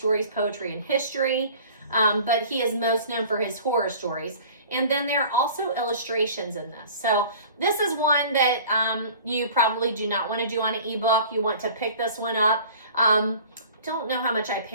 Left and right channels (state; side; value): inverted; both; correlation -0.45